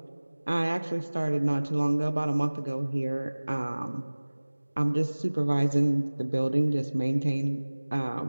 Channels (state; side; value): inverted; both; correlation -1.00